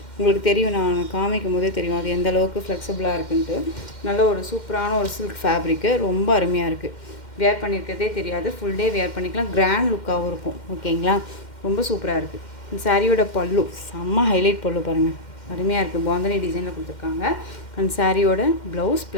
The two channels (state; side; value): late; right; 2.1 ms